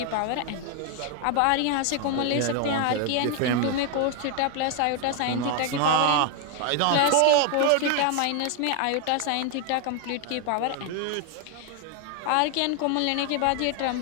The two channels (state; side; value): different; both; correlation 0.01